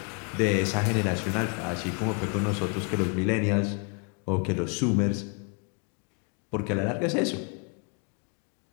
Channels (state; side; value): quieter; right; 36.2 dB